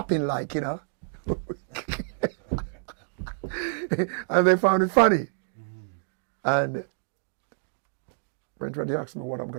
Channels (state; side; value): silent; left; digital silence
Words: like, and they found it funny. And when they asked me what I'm